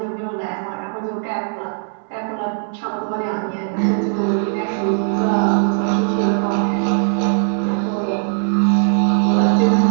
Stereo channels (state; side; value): silent; left; digital silence